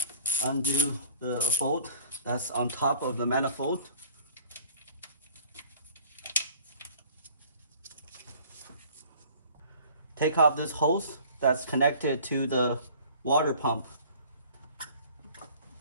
undo the bolt that's on top of the manifold. Take off this hose that's connected to the water pump.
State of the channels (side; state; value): both; inverted; correlation -0.51